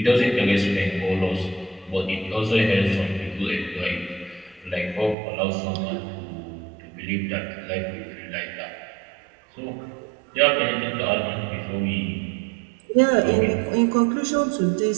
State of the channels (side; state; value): left; drops out; at 5.2 s